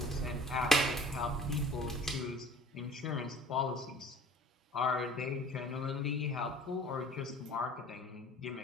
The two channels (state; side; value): normal; both; correlation 0.48